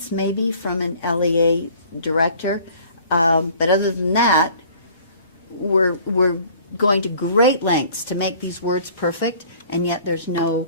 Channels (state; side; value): inverted; both; correlation -0.52